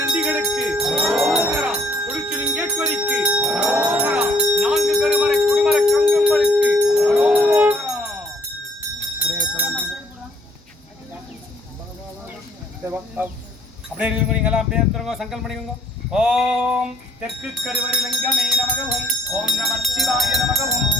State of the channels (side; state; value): both; normal; correlation 0.62